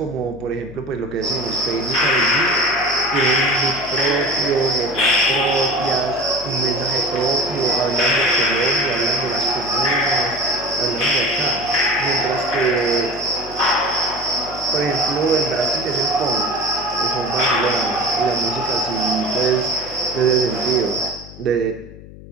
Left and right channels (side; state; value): left; noise; hum, 17 dB below the sound